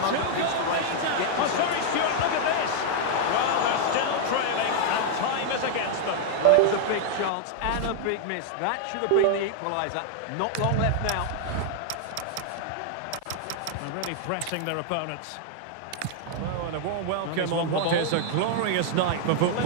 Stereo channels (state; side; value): different; both; correlation -0.01